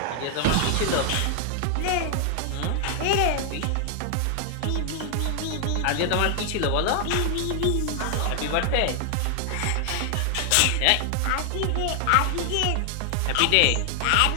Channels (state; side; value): different; both; correlation 0.00